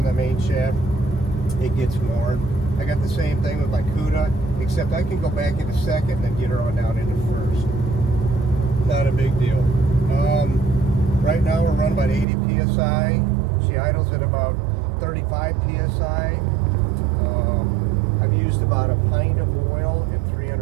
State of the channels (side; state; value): left; drops out; at 12.2 s